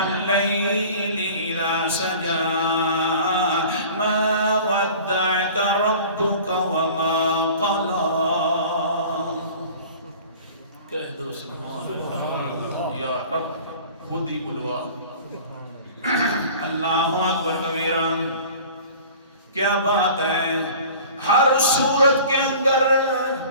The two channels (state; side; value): inverted; both; correlation -0.43